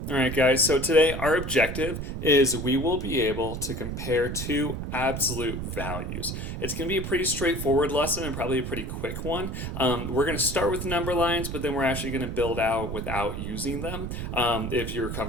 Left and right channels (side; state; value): right; noise; rumble, 5 dB below the sound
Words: All right, guys, so today our objective is we will be able to compare two absolute values. It's going to be a pretty straightforward lesson and probably a pretty quick one. We're going to start with number lines, but then we're actually going to build out without using them if you're